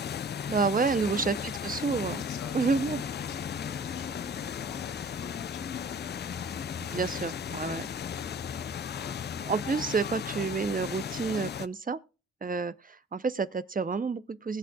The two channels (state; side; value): normal; both; correlation 0.48